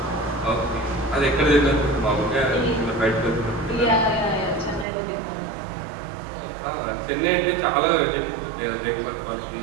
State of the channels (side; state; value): left; drops out; at 4.9 s